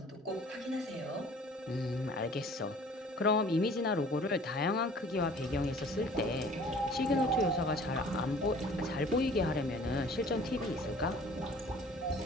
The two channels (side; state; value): both; normal; correlation 0.50